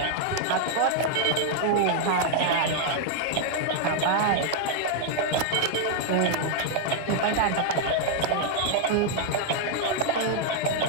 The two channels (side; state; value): both; different; correlation 0.00